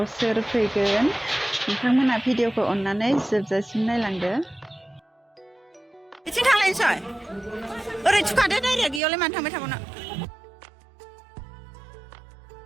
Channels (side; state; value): left; drops out; at 9.0 s